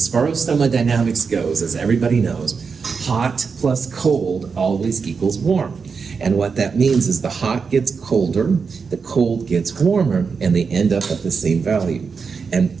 far as thermodynamics goes, as everybody knows, hot plus cold always equals warm. And what that means is the hot gets colder, the cold gets warmer, and they end up at the same value. And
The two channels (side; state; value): left; quieter; 5.4 dB